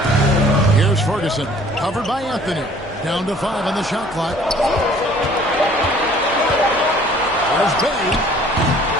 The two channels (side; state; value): both; normal; correlation 0.54